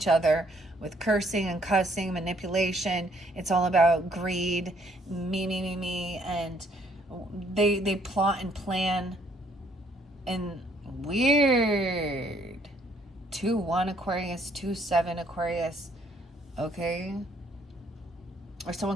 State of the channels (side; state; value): both; normal; correlation 0.65